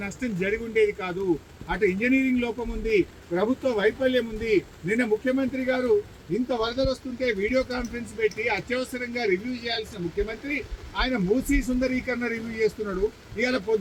నష్టం జరిగి ఉండేది కాదు. అటు ఇంజనీరింగ్ లోపం ఉంది, ప్రభుత్వ వైఫల్యం ఉంది. నిన్న ముఖ్యమంత్రి గారు ఇంత వరదలు వస్తుంటే వీడియో కాన్ఫరెన్స్ పెట్టి అత్యవసరంగా రివ్యూ చేయాల్సిన ముఖ్యమంత్రి ఆయన మూసీ సుందరీకరణ రివ్యూ చేస్తున్నాడు. ఇవాళ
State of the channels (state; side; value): identical; both; correlation 1.00